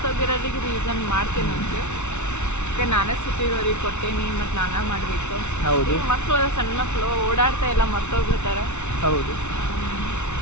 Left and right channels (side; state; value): right; late; 0.82 ms